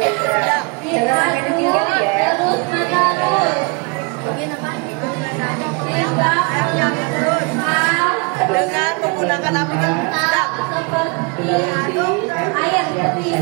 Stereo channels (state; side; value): quieter; left; 31.4 dB